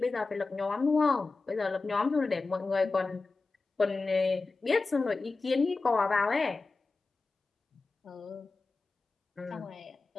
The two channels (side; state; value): right; quieter; 3.8 dB